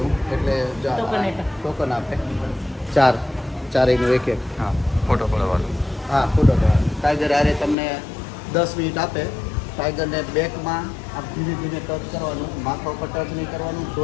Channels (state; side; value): drops out; right; at 7.8 s